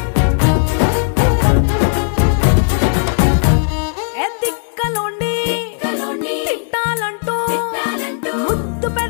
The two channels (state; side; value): silent; right; 69 dB below the other